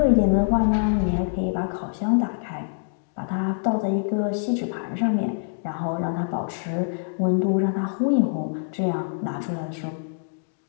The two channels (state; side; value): silent; right; digital silence